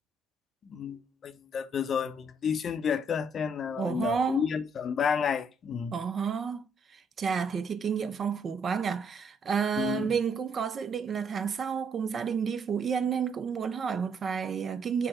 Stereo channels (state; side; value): normal; both; correlation 0.70